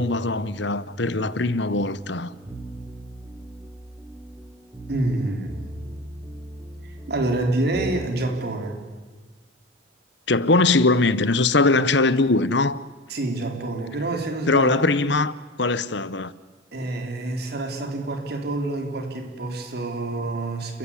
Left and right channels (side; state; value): both; normal; correlation 0.29